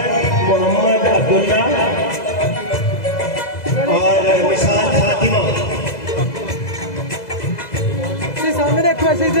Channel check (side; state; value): right; late; 2.0 ms